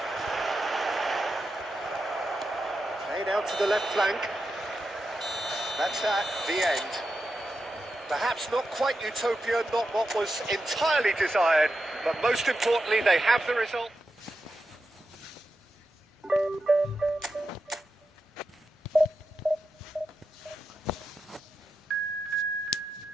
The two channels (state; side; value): normal; both; correlation 0.89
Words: Played out to the left flank. That's that, the end. Perhaps not quite utopia, not what was entirely desired, but most importantly, they have the result.